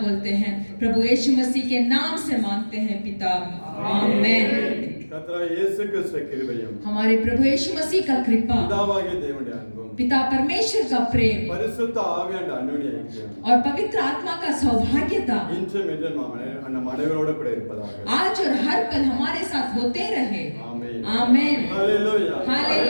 हैं प्रभु यीशु मसीह के नाम से मांगते हैं पिता, आमीन। हमारे प्रभु यीशु मसीह का कृपा, पिता परमेश्वर का प्रेम और पवित्र आत्मा का सौभाग्यता आज और हर पल हमारे साथ होते रहे। आमीन। Hallelujah,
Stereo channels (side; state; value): both; inverted; correlation -1.00